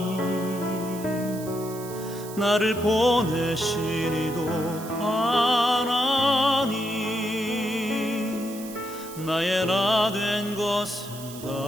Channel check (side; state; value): right; noise; hiss, 15 dB below the sound